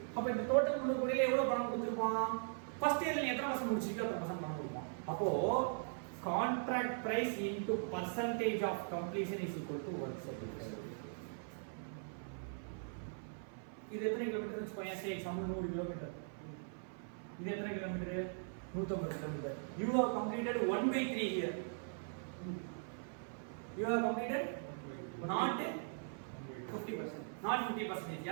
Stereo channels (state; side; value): silent; left; 51 dB below the other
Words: அப்ப இந்த டோட்டல் 300 கோடியில எவ்வளவு பணம் கொடுத்திருப்பான்? ஃபர்ஸ்ட் இயர்ல நீ எத்தனை பர்சன்ட் முடிச்சிருக்கோ அத்தனை பர்சன்ட் பணம் கொடுப்பான். அப்போ contract price into percentage of completion is equal to work certificate. இது எத்தனை கிலோமீட்டர் வெச்சுக்கோங்க. Say example 100 kilometre. இது எத்தனை kilometre? 150 kilometre. You have completed 1/3 here. You have completed not 50%. Not 50%.